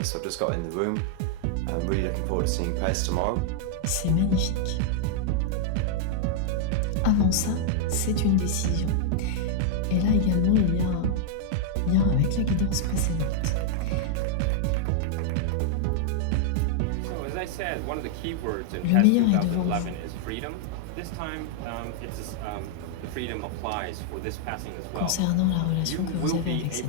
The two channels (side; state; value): both; different; correlation -0.01